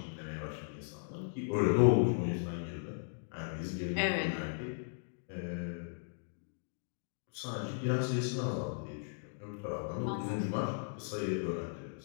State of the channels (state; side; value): silent; right; digital silence